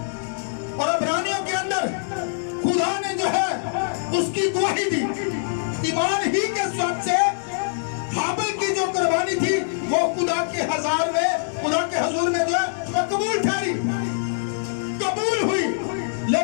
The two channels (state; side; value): silent; right; digital silence